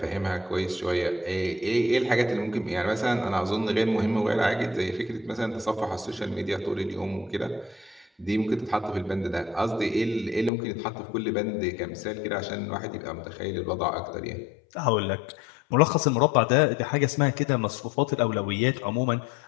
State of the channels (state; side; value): drops out; right; at 10.5 s